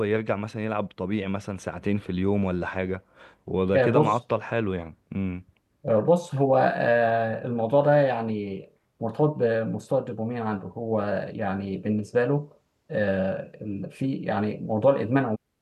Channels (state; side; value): identical; both; correlation 1.00